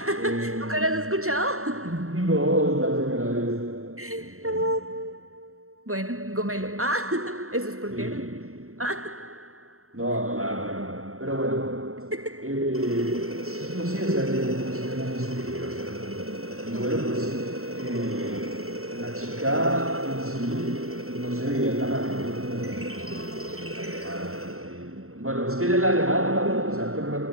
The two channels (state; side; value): late; left; 0.63 ms